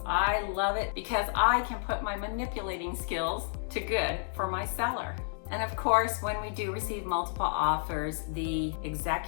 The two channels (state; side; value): silent; right; digital silence